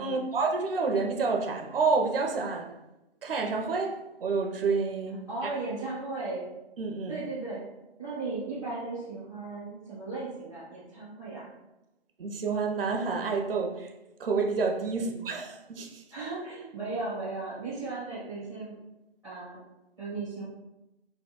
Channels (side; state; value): left; quieter; 3.8 dB